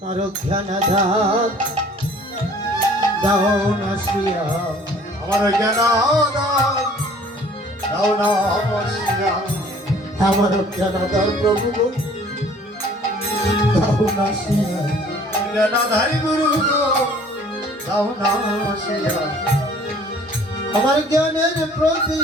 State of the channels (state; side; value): normal; both; correlation 0.53